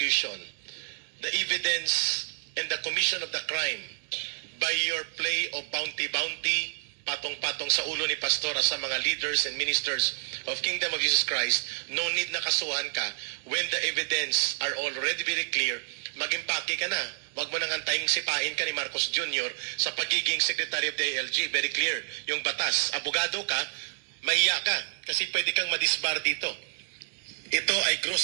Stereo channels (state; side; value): silent; left; digital silence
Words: the evidence and the commission of the crime by your play of bounty, patong-patong sa ulo ni Pastora sa mga leaders and ministers of Kingdom of Jesus Christ, no need na kasuhan ka. When the evidence are already very clear, mag-impake ka na. Huwag mo nang antayin sipain ka ni Marcos Jr. sa pagiging Secretary of the ALG. Very clear. Yung batas. Abogado ka, mahiya ka. Kasi pwede kang madisbar dito. Ito ay